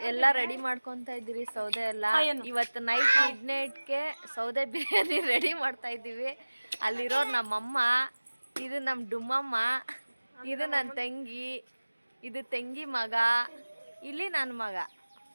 ಎಲ್ಲ ರೆಡಿ ಮಾಡ್ಕೊತಾ ಇದ್ದೀರಿ, ಸೌದೆ ಎಲ್ಲ. ಇವತ್ತು ನೈಟ್ ಮಿಡ್ನೈಟ್ಗೆ ಸೌದೆ ಬಿರಿಯಾನಿ ರೆಡಿ ಮಾಡ್ತಾ ಇದ್ದೀವಿ. ಅಲ್ಲಿರೋರು ನಮ್ಮಮ್ಮ, ಇದು ನಮ್ಮ ಡುಮ್ಮಮ್ಮ, ಇದು ನನ್ನ ತಂಗಿ, ಇದು ತಂಗಿ ಮಗ, ಇಲ್ಲಿ ನನ್ನ ಮಗ.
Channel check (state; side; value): inverted; both; correlation -1.00